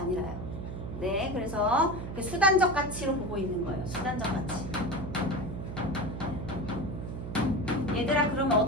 네, 그래서 그 수단적 가치로 보고 있는 거예요. 수단적 가치. 얘들아, 그러면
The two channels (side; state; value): right; noise; hum, 7 dB below the sound